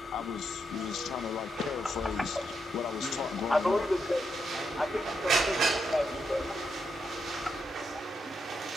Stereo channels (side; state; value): both; normal; correlation 0.82